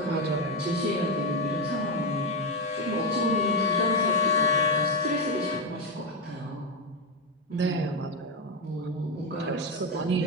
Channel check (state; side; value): normal; both; correlation 0.10